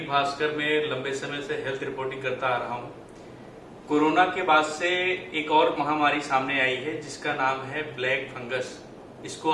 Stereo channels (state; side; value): identical; both; correlation 1.00